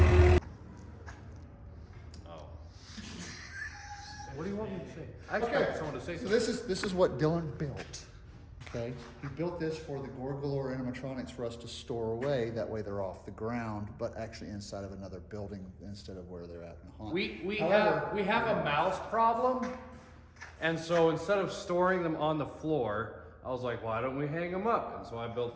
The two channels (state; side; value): identical; both; correlation 1.00